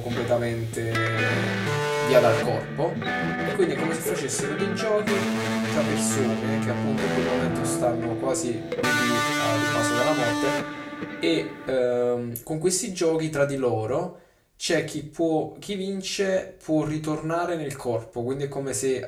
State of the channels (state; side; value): identical; both; correlation 1.00